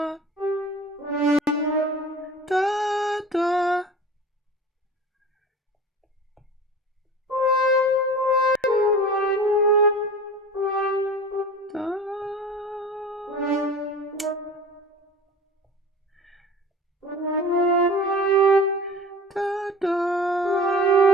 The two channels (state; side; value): normal; both; correlation 0.38